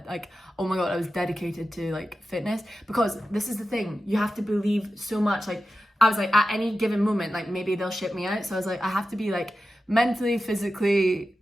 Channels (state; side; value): normal; both; correlation 0.92